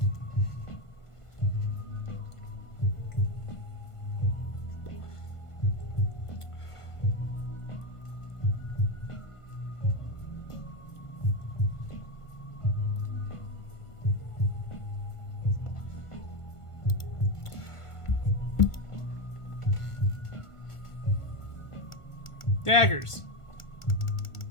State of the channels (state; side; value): late; right; 1.5 ms